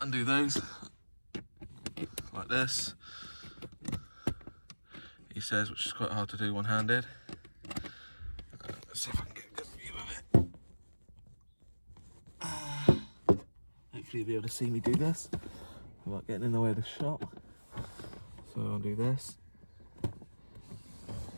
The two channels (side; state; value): both; inverted; correlation -1.00